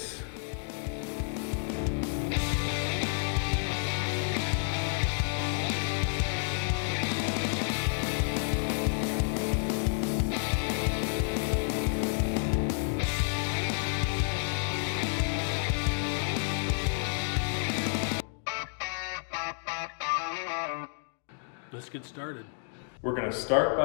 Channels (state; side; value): silent; right; digital silence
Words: Let's get started. We're going to start